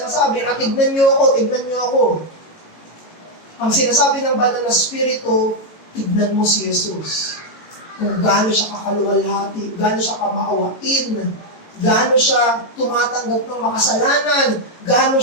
na tignan niyo ako, tignan niyo ako. Ang sinasabi ng banal na spirito, tignan mo si Jesus. Kung gaano siya kakaluwalhati, gaano siya kamaawain, gaano siya tumatanggap ng makasalanan, gaano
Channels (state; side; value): late; right; 18 ms